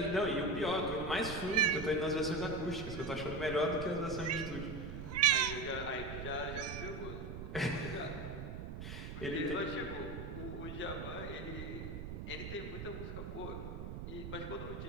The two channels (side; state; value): right; noise; rumble, 7 dB below the sound